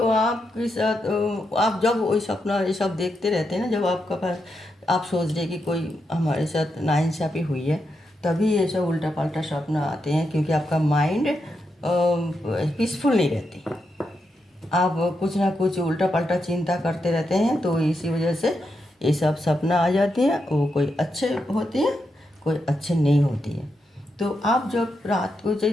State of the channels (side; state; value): both; normal; correlation 0.84